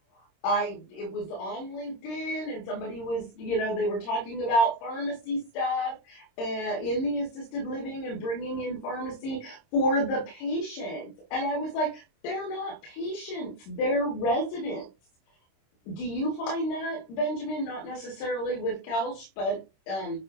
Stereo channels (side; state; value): right; late; 26 ms